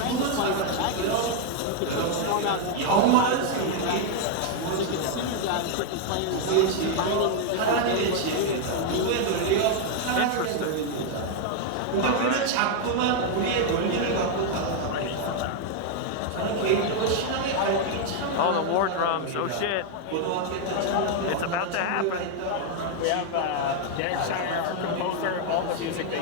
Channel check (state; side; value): different; both; correlation 0.00